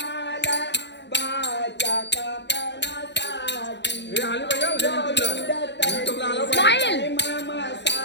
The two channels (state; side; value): late; right; 0.51 ms